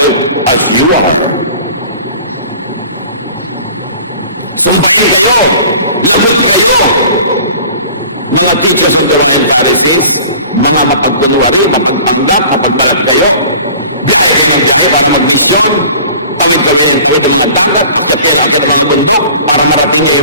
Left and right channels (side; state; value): both; inverted; correlation -0.45